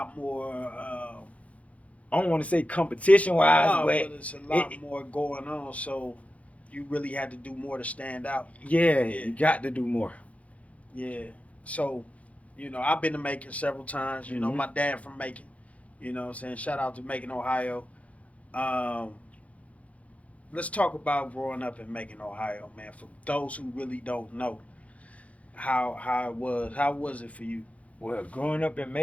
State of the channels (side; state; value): right; late; 0.066 ms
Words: more. I don't want to say competition wise, No, but but it's a lot more going on. So you really had to do more to stand out. yeah, Yeah, you got to do more. yeah. So, I've been to Macon several times. Hmm. My dad from Macon. What I'm saying? Shout out to Macon, Ohio. Um, let's talk about growing up in Macon, Ohio, man. For those who really don't know how it was, how was it for you? Well, growing up in